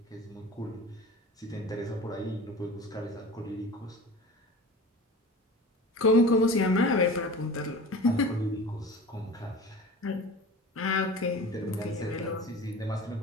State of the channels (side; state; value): both; normal; correlation 0.36